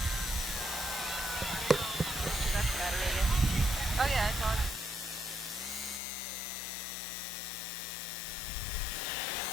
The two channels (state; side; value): drops out; right; at 6.0 s